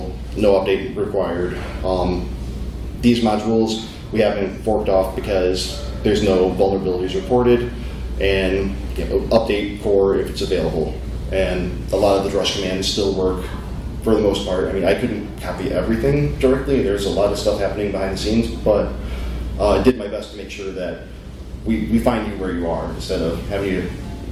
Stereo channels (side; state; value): both; identical; correlation 1.00